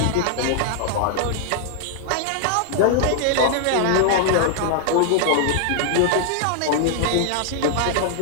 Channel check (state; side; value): different; both; correlation -0.01